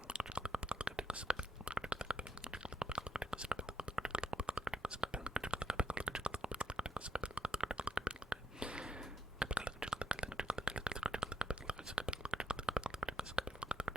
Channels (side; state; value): both; normal; correlation 0.78